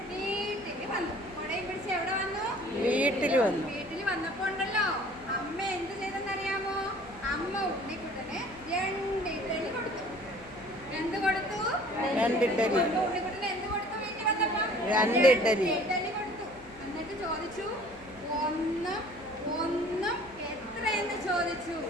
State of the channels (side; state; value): left; noise; hum, 22 dB below the sound